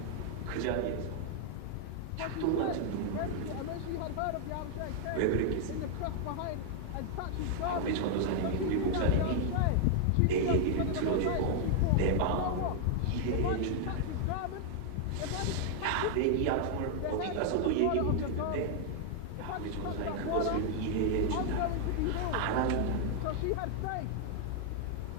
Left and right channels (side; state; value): both; different; correlation 0.00